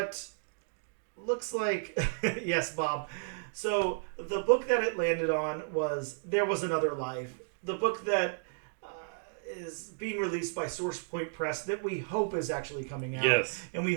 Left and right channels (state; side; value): silent; left; digital silence